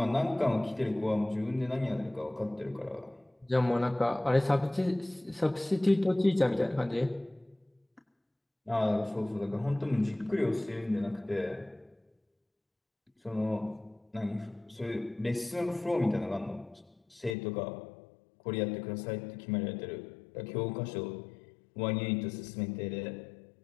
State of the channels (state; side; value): drops out; right; at 17.4 s